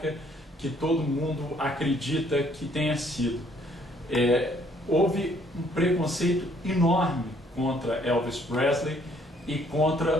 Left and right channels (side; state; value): both; normal; correlation 0.64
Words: que todo mundo acredita que tenha sido. Houve um preconceito enorme contra Elvis Presley e